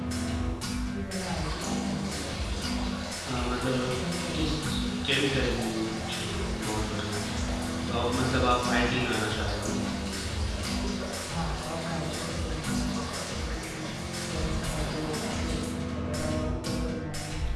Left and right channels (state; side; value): identical; both; correlation 1.00